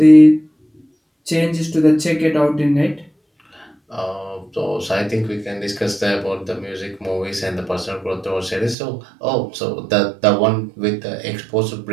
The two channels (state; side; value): drops out; left; at 8.8 s